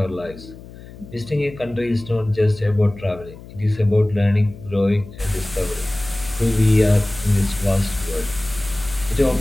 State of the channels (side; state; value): left; noise; hum, 17 dB below the sound